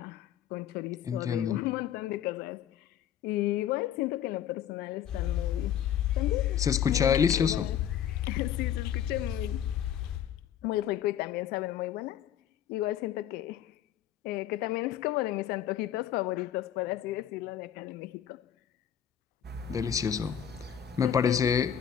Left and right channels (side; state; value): right; quieter; 9.9 dB